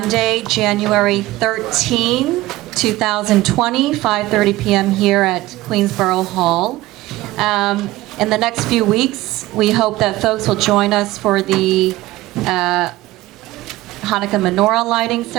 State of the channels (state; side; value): quieter; left; 17.7 dB